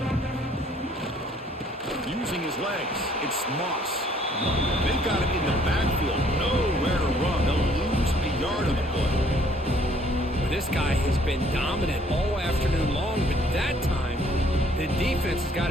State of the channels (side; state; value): both; normal; correlation 0.61